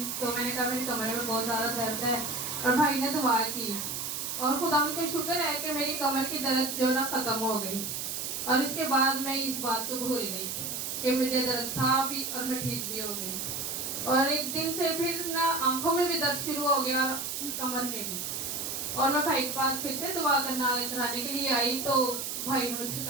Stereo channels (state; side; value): noise; right; hiss, 4 dB below the sound